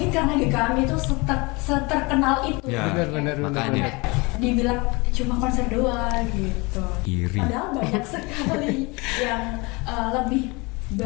karena GKM itu seterkenal itu. Ya, benar. makanya dibilang cuma konser doang gitu. Iri. Padahal banyak sekali yang lebih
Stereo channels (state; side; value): quieter; right; 26.7 dB